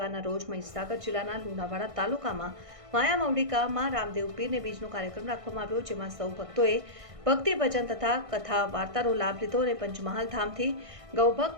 રોજ મહીસાગર જિલ્લાના લુણાવાડા તાલુકામાં માયા મવડીકામાં રામદેવ પીરને બીજનો કાર્યક્રમ રાખવામાં આવ્યો, જેમાં સૌ ભક્તોએ ભક્તિ ભજન તથા કથા વાર્તાનો લાભ લીધો અને પંચમહાલ ધામથી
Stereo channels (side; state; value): left; late; 1.6 ms